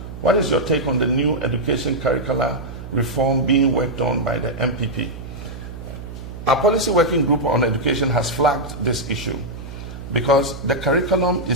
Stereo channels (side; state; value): right; noise; hum, 11 dB below the sound